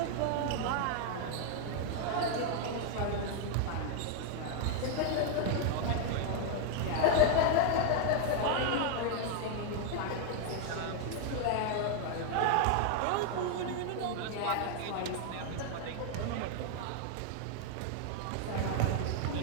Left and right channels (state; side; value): different; both; correlation 0.01